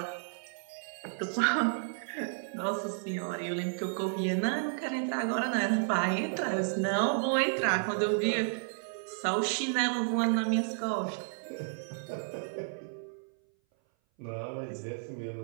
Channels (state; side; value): silent; left; 56 dB below the other